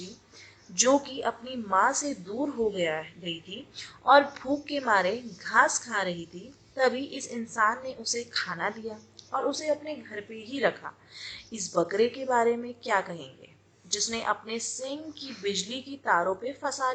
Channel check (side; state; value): both; identical; correlation 1.00